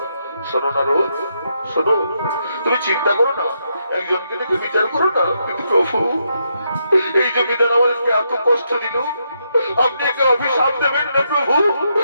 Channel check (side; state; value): both; inverted; correlation -0.79